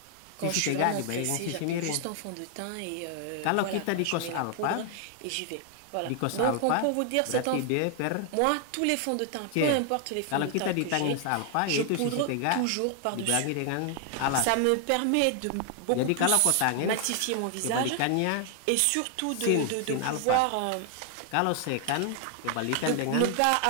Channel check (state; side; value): different; both; correlation 0.00